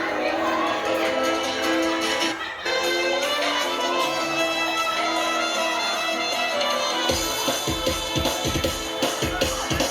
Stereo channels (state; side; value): identical; both; correlation 1.00